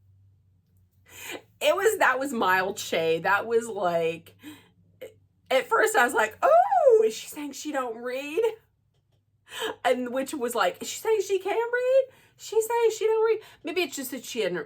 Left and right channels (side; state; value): both; identical; correlation 1.00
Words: that was mild shade. That was like, at first I was like, oh, is she saying she don't read? And which was like, is she saying she can read? She's saying she don't read. Maybe it's just that